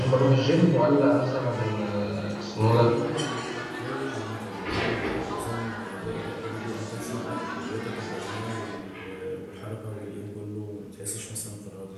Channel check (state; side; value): identical; both; correlation 1.00